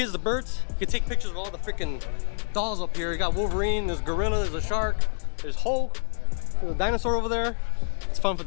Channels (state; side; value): silent; right; digital silence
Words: to Bert's. You can take pictures of all the freaking dolls up here. You got Wolverine, there's Gorilla, there's a shark, there's Hulk, there's a dinosaur over there. It's fun for